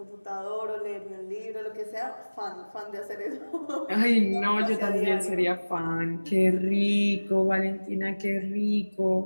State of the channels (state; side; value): inverted; both; correlation -1.00